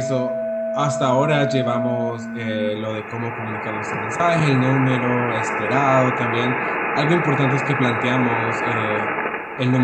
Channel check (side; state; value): both; identical; correlation 1.00